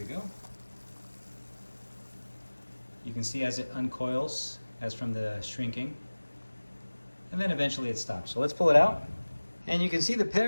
go. You can see as it uncoils, as from the shrinking. And then eventually it stops. So let's pull it out. And you can see the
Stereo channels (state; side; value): inverted; both; correlation -1.00